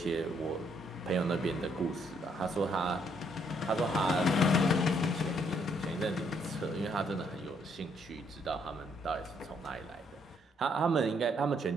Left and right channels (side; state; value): both; normal; correlation 0.70